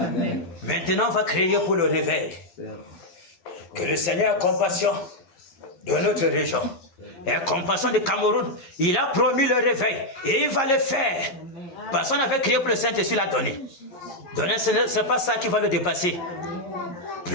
Maintenant, on va crier pour le réveil. Que le Seigneur ait compassion de notre région. Et compassion du Cameroun. Il a promis le réveil. Et il va le faire. Parce qu'on avait crié pour le Saint-Esprit, il l'a donné. Donner, ce n'est pas ça qui va le dépasser.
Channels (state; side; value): late; right; 11 ms